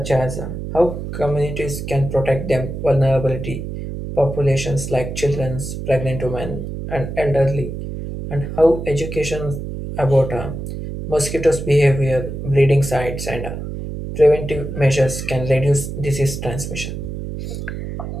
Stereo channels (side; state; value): right; noise; hum, 7 dB below the sound